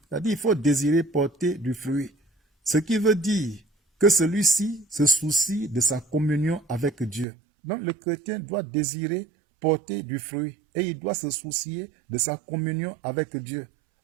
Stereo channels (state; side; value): drops out; left; at 7.2 s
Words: C'est-à-dire, il faut désirer porter du fruit. Ce qui veut dire que celui-ci se soucie de sa communion avec Dieu. Donc, le chrétien doit désirer porter du fruit et il doit se soucier de sa communion avec Dieu.